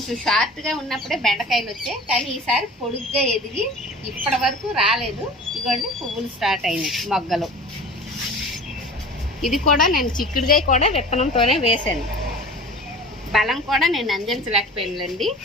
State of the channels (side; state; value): both; normal; correlation 0.39